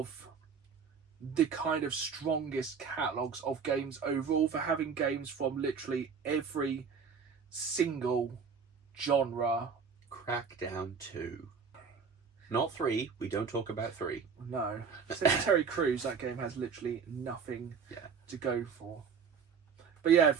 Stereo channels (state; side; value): quieter; left; 6.1 dB